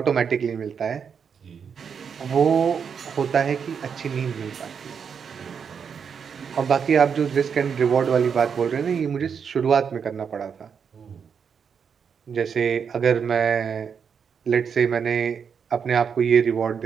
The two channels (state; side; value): quieter; left; 6.8 dB